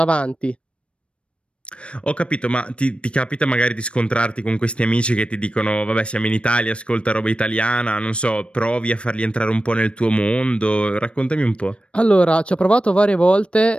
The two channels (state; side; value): late; right; 0.059 ms